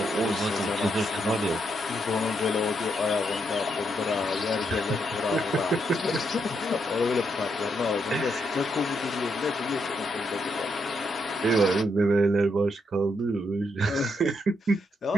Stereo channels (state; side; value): normal; both; correlation 0.78